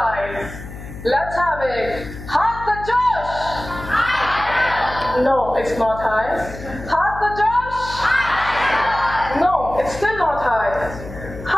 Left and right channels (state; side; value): noise; left; hum, 12 dB below the sound